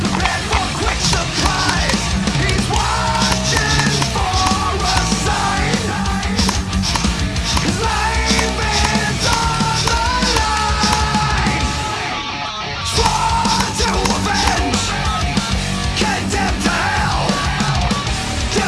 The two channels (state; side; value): identical; both; correlation 1.00